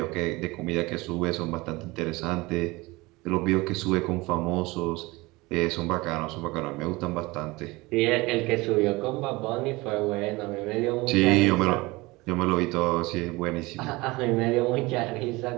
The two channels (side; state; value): left; quieter; 22.4 dB